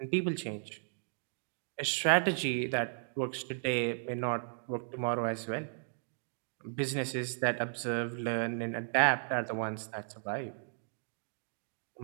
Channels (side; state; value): left; silent; digital silence